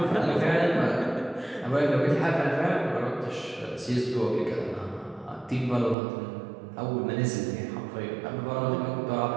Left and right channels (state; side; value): drops out; left; at 6.0 s